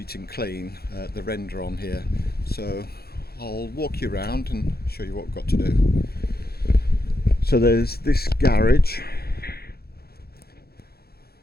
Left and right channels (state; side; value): late; right; 0.46 ms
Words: and clean, the render on here. So I'll walk you around and show you what we've got to do. So there's this garage,